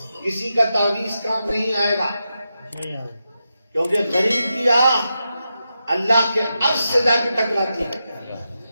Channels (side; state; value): both; inverted; correlation -0.88